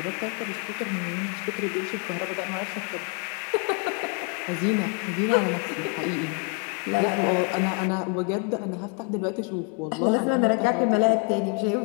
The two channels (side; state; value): right; quieter; 34.9 dB